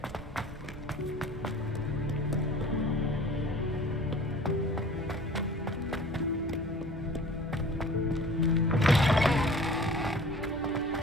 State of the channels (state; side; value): normal; both; correlation 0.45